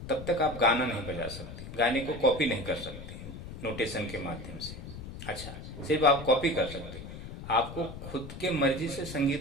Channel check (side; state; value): left; noise; rumble, 11 dB below the sound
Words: तब तक आप गाना नहीं बजा सकते, गाने को कॉपी नहीं कर सकते नोटेशन के माध्यम से। अच्छा, सिर्फ आप कॉपी कर सकते, आपको खुद के मर्जी से